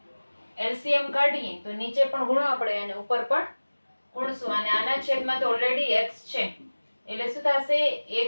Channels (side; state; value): both; inverted; correlation -1.00